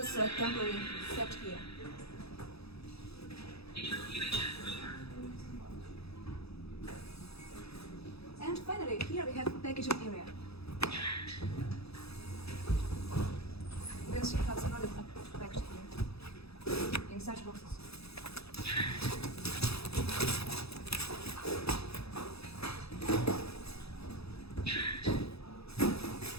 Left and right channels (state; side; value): late; right; 0.78 ms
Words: are temporarily kept here. And finally, here we have packaging area. You can see how the products are packaged here in such boxes.